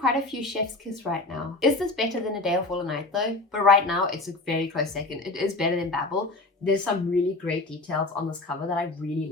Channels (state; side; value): quieter; right; 3.2 dB